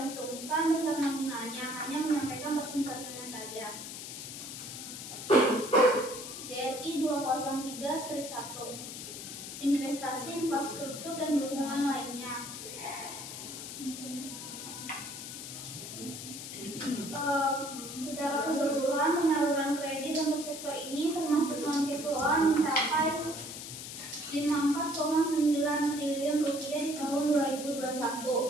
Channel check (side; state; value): left; noise; hiss, 9 dB below the sound